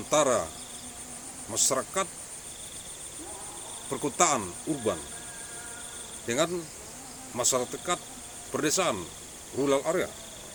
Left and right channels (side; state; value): both; identical; correlation 1.00